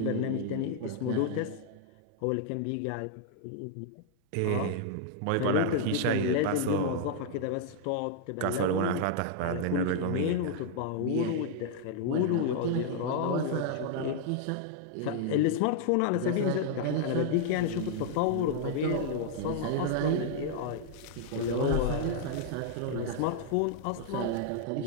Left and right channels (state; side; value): different; both; correlation 0.00